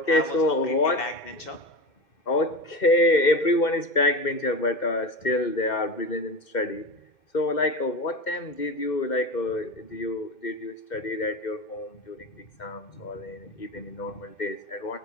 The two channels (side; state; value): right; late; 2.1 ms